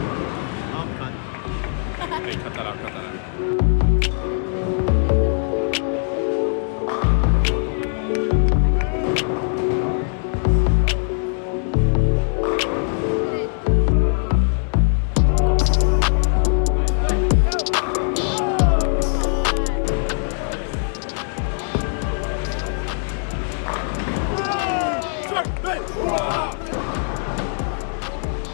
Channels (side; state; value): right; silent; digital silence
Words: cut. Hey, cut that out, cut that out.